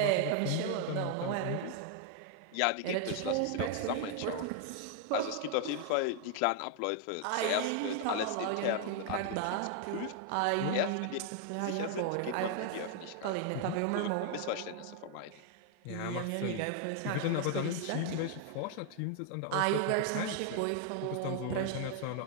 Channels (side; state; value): both; different; correlation 0.00